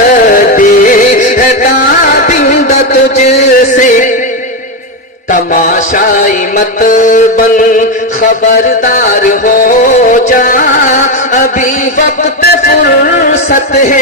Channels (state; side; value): normal; both; correlation 0.10